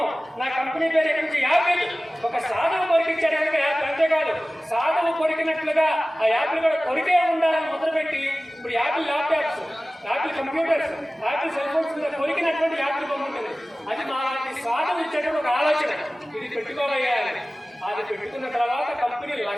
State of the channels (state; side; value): normal; both; correlation 0.97